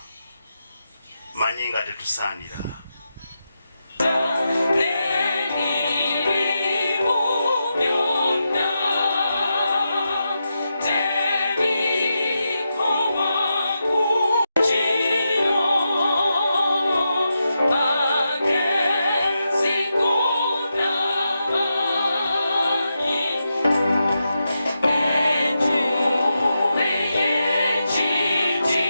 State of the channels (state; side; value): inverted; both; correlation -0.87